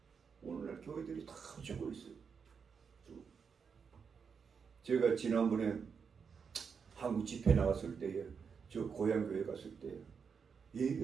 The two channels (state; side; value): quieter; left; 6.1 dB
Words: 오늘날 교회들이 다 죽고 있어요. 제가 지난번에 한국 집회 나갔을 때에 저 고향 교회 갔을 때